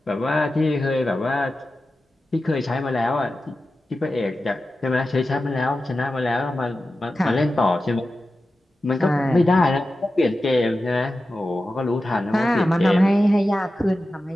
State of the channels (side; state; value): both; normal; correlation 0.93